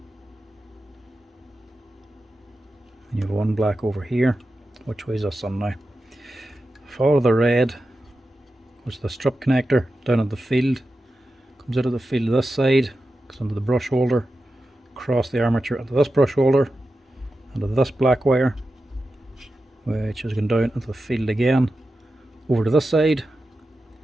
And you have one black over here. Which way is this on now? Follow the red, goes to the strip connector down at the field. Comes out of the field this side, goes into the brush holder, across the armature into this brush holder, into this black wire, which is going down into the field again, over to this side,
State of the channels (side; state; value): both; normal; correlation 0.91